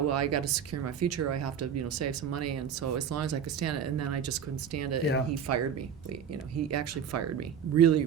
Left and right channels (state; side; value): quieter; left; 7.8 dB